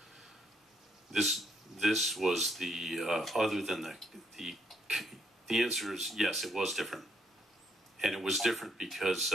This was the other than the answer is yes, it was different, and it was different because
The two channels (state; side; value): normal; both; correlation 0.73